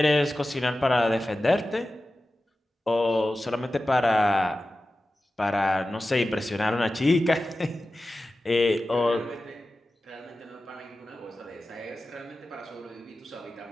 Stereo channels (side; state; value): both; normal; correlation 0.94